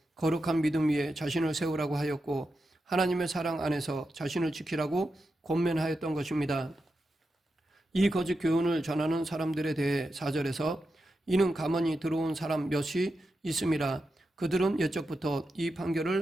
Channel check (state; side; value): normal; both; correlation 0.89